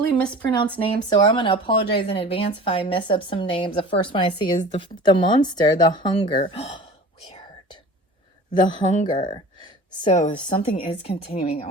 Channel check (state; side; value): normal; both; correlation 0.40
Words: mispronounced names, so I'm going to apologize in advance if I mess up some names. The first one I see is the monster, the hunger. Weird. The hunger. So something is continuing